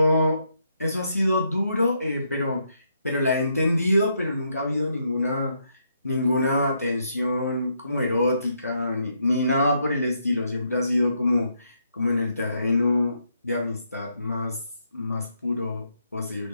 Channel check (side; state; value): both; inverted; correlation -0.77